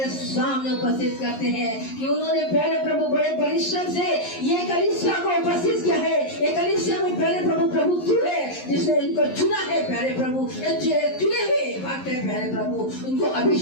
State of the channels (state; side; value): late; right; 11 ms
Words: सामने उपस्थित करते हैं कि उन्होंने प्यारे प्रभु बड़े परिश्रम से ये कलीसिया को उपस्थित किया है। ये कलीसिया में प्यारे प्रभु तू है जिसने इनको चुना है प्यारे प्रभु, चुने हुए भक्त है प्यारे प्रभु, उनको